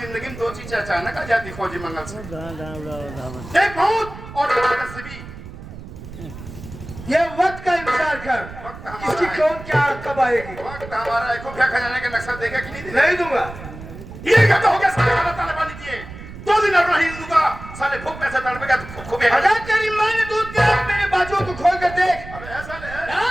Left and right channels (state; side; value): noise; right; rumble, 13 dB below the sound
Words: में दो चीजें अचानक आ जाती फौजी मंगल सिंह, एक मौत और एक नसीबी। ये वक्त का इंतजार कर, इसकी कौन क्या कब आएगी। वक्त हमारा है। खुफिया खजाने का नक्शा देगा कि नहीं देगा? नहीं दूंगा। ये क्या हो गया? साले खाना ताले पानी दिए 2 दिन और नहीं दूंगा। साले भूख पैसे तड़पेगा तो खुफिया अगर तेरी माँ ने दूध दिया, मेरे बाजुओं को खोल कर देख। अबे ऐसा ले,